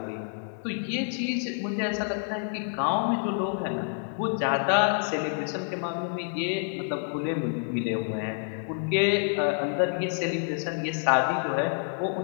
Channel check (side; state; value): right; silent; 58 dB below the other